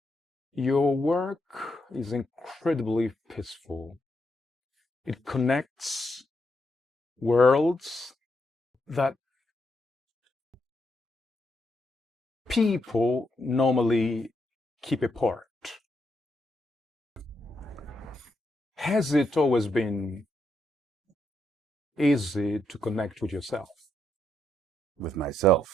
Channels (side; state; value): both; normal; correlation 0.80